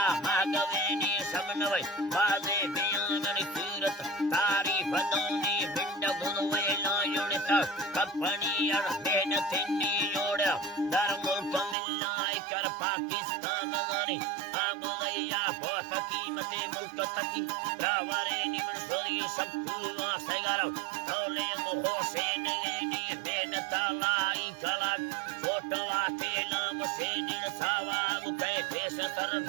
भागवेनी समनवै बाजे बियाननी सूरत तारीफ दौनी बिंड गुणवे लायोड़ित कपनी अड़ मेहनतिनी योड़ा दर मुल्क मिलनाई कर पाकिस्तान गानी आगोया बहुत कीमते मुल्क तकी रावरे निमन सोरी सब तुआ सगारो तौले मोहोशे नेनी मेहनता लाई कला छोटवा के नाम से निरसावा गुते देश तरन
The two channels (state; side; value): drops out; left; at 11.8 s